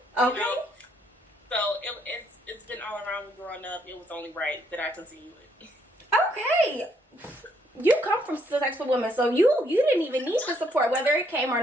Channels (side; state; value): both; normal; correlation 0.70